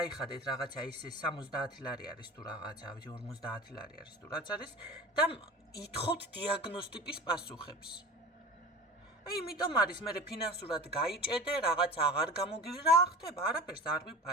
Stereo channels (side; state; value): both; normal; correlation 0.35